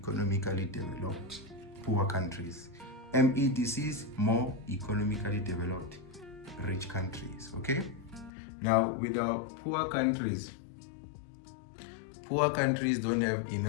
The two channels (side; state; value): right; drops out; at 8.3 s